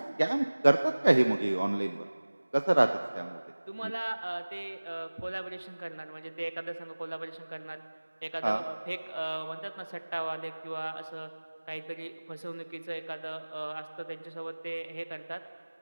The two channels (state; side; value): inverted; both; correlation -1.00